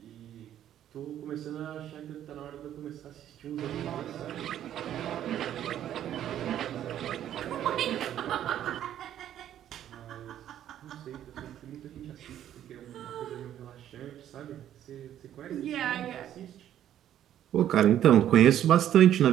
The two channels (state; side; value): quieter; left; 11.1 dB